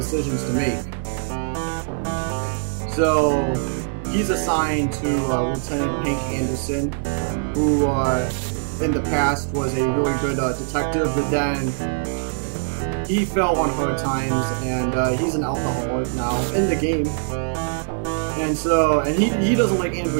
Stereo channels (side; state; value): left; silent; digital silence